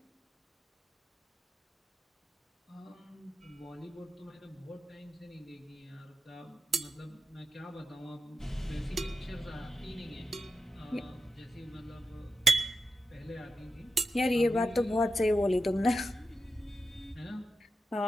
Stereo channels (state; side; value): normal; both; correlation 0.90